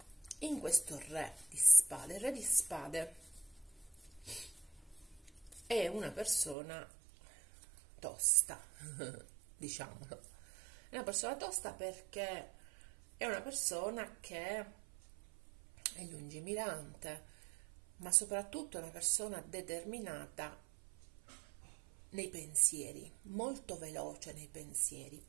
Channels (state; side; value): drops out; left; at 6.6 s